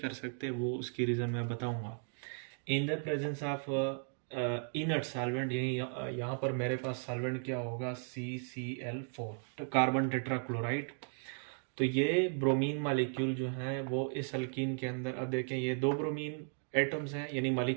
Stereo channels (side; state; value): left; silent; 54 dB below the other